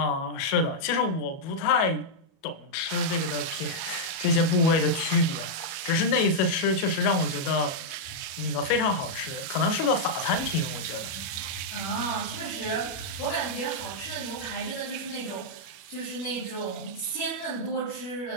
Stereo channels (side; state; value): right; late; 36 ms